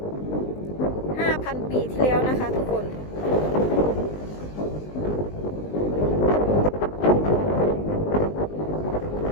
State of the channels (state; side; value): late; right; 19 ms